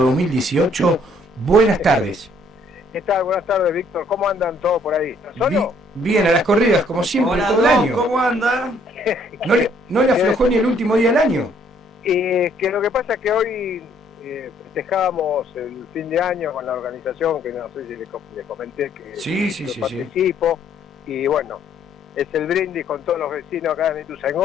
buenas tardes. ¿Qué tal? Buenas tardes, Víctor. ¿Cómo andan todos por ahí? ¿Estás solo? Bien, a las corridas, como siempre, Hola, todo el año. ¿cómo anda? ¿No le aflojó ni el último día del año? Que lo que pasa es que hoy festejábamos el fin de año con la organización, que no sé si les comenté que Sí. participo, y bueno, es el brindis con todos los vecinos acá de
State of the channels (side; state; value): both; normal; correlation 0.64